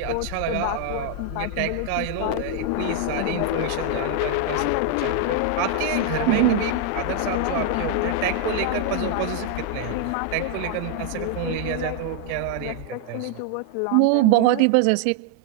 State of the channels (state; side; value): different; both; correlation 0.00